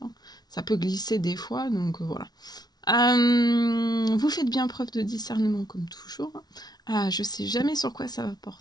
Hein. Ça peut glisser des fois, donc voilà. Vous faites bien preuve de discernement comme toujours. Je sais jamais sur quoi ça va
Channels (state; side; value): late; right; 0.19 ms